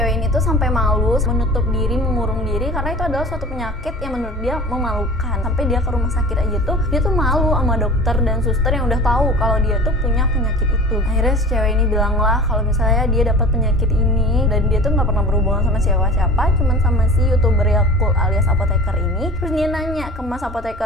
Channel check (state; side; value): normal; both; correlation 0.39